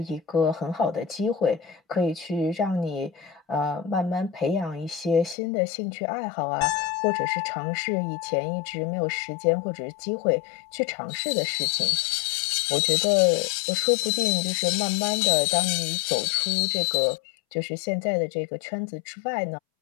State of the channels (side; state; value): right; drops out; at 5.4 s